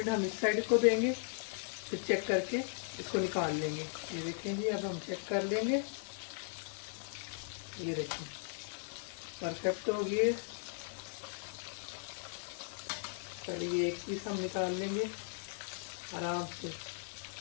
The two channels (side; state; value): right; silent; 53 dB below the other